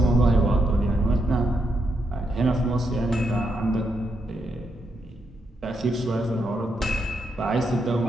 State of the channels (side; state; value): both; normal; correlation 0.81